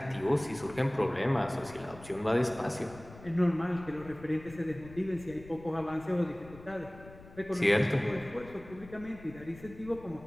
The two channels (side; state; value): left; noise; rumble, 18 dB below the sound